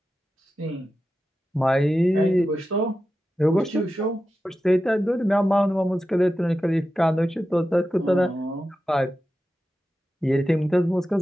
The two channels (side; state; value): both; normal; correlation 0.92